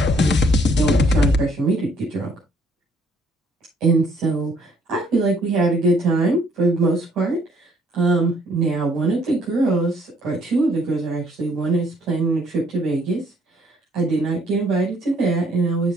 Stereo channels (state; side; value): normal; both; correlation 0.64